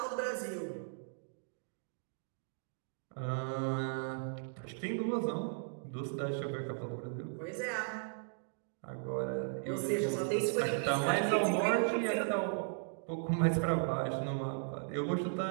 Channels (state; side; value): silent; left; digital silence